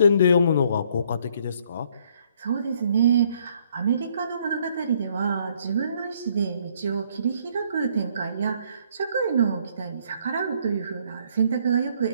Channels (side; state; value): both; inverted; correlation -0.65